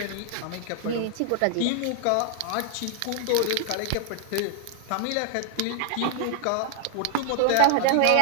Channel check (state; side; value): different; both; correlation 0.00